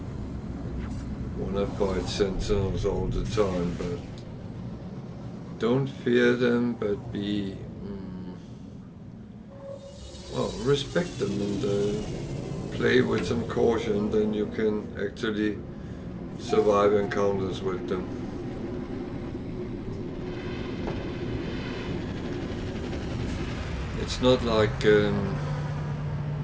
want to fight sentinels all the time, but don't fear them, but be well, respect them and play with some caution, then you can actually survive encounters with them. It's not like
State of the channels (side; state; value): both; identical; correlation 1.00